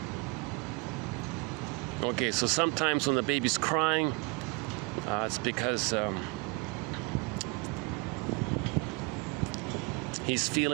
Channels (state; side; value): quieter; left; 28.0 dB